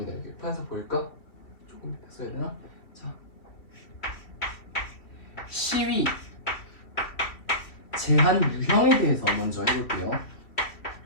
이렇게 판서 보일까? 조금 써야 되나? 자, 시위 제한 유형에 대해서 먼저 해볼게요.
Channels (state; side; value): late; right; 2.9 ms